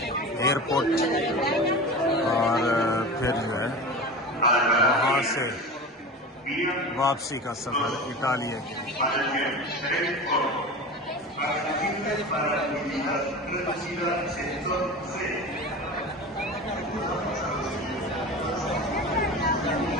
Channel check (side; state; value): both; normal; correlation 0.31